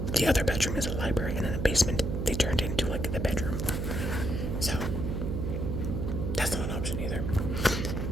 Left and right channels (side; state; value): right; noise; hum, 1 dB below the sound